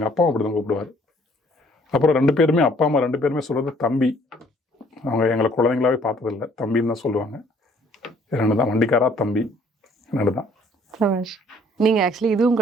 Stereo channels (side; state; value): both; normal; correlation 0.60